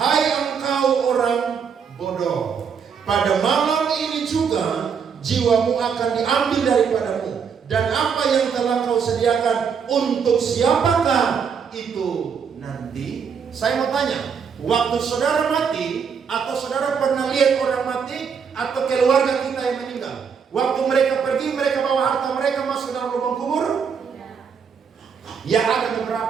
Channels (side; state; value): left; quieter; 6.6 dB